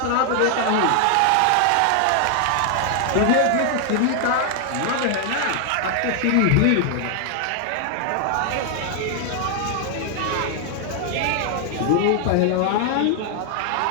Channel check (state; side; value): different; both; correlation 0.00